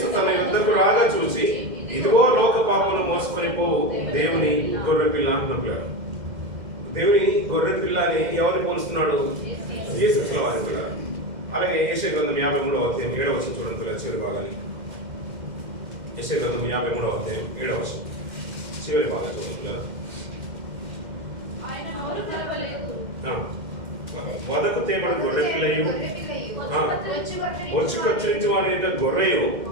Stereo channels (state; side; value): late; left; 2.1 ms